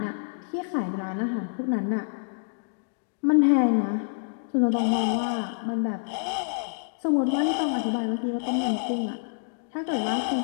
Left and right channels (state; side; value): silent; right; digital silence